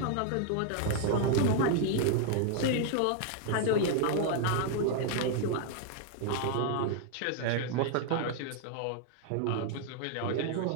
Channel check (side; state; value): both; different; correlation 0.00